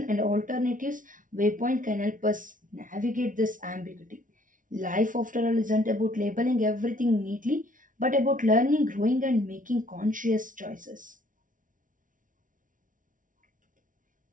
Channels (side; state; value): left; late; 0.38 ms